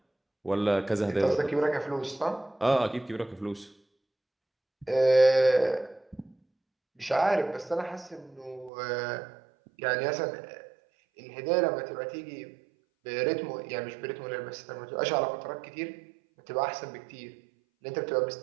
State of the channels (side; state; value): left; drops out; at 8.7 s